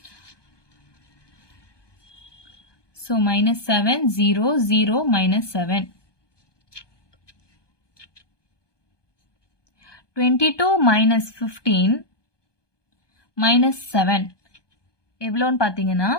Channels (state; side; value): late; right; 1.2 ms